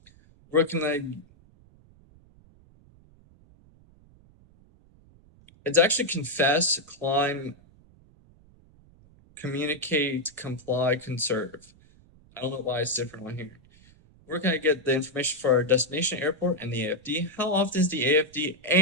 Where can I? It's actually confess, climb, communicate, comply, conserve. I don't know why it's different on here. Where can I get the information for our destination airport and the AFD? How often is the AFD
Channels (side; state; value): right; noise; rumble, 27 dB below the sound